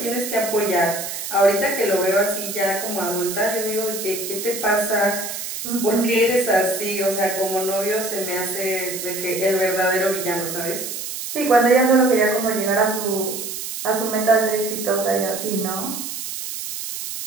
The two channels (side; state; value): right; noise; hiss, 6 dB below the sound